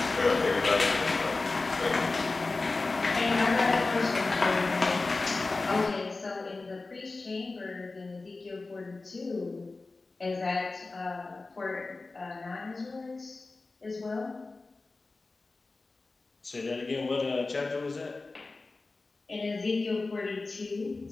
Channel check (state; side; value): quieter; right; 3.6 dB